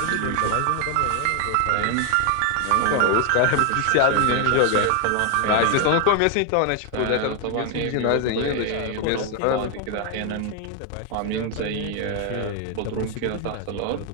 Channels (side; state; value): both; different; correlation 0.00